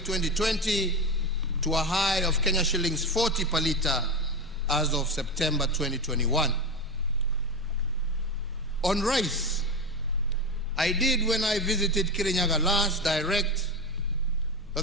2020 to a high of Kenya shillings 40 per litre as of September 2021. On rice, I did, when I visited Kirinyaga last, direct that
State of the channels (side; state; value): both; normal; correlation 0.19